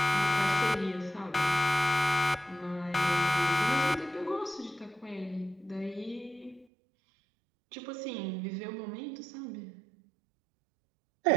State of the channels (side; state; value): left; drops out; at 6.7 s